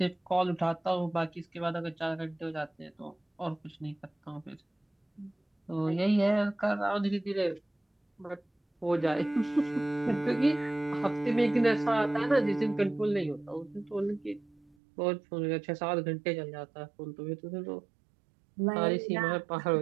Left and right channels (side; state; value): left; drops out; at 14.8 s